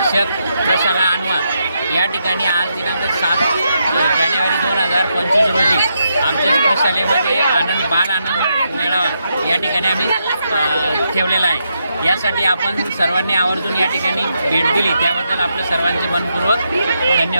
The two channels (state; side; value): inverted; both; correlation -0.81